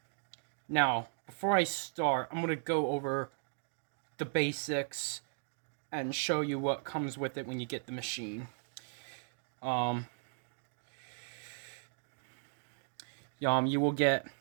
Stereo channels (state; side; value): silent; left; digital silence